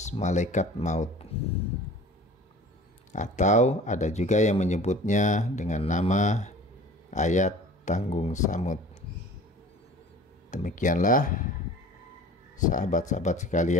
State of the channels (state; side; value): normal; both; correlation 0.44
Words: malaikat maut, atau ada juga yang menyebutnya dengan nama ayat tanggung samud. Demikianlah sahabat-sahabat